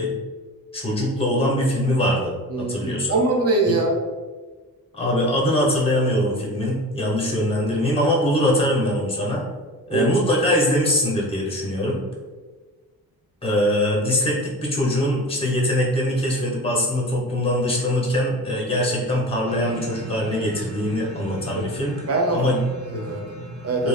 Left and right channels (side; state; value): both; normal; correlation 0.33